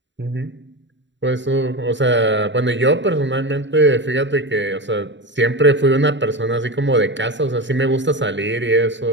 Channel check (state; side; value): late; left; 0.53 ms